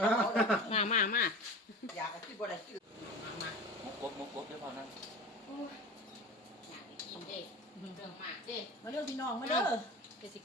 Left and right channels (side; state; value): both; normal; correlation 0.34